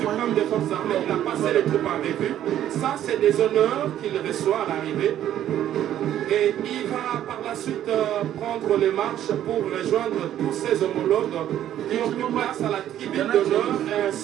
des forces armées, il a passé les troupes en revue. Ça, c'est des honneurs qu'il reçoit à l'arrivée. Et il va par la suite prendre les marches pour rejoindre tous ses homologues qui ont pris place à la tribune d'honneur et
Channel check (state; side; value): quieter; left; 11.5 dB